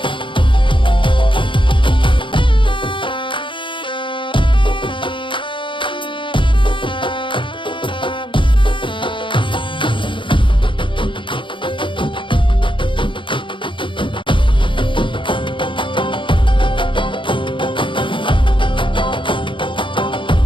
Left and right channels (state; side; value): late; right; 0.24 ms